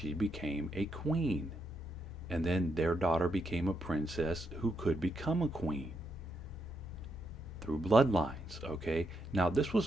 became a queen. And then their daughter became a princess who could become a queen through bloodlines, okay? Now, this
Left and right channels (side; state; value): both; normal; correlation 0.80